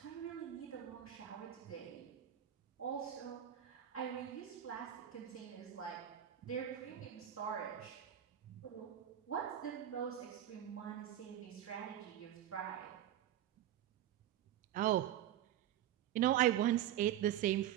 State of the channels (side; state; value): left; quieter; 11.4 dB